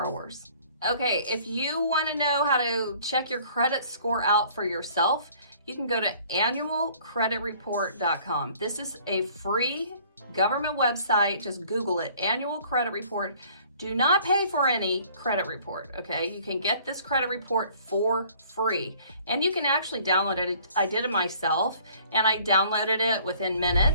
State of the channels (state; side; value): inverted; both; correlation -0.55